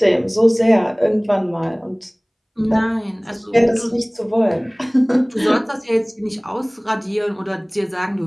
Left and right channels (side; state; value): both; identical; correlation 1.00